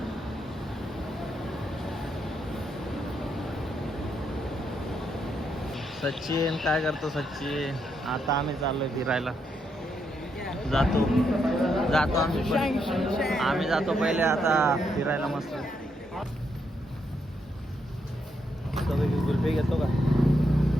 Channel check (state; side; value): normal; both; correlation 0.79